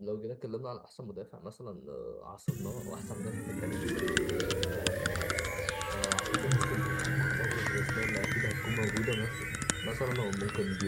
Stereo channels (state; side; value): identical; both; correlation 1.00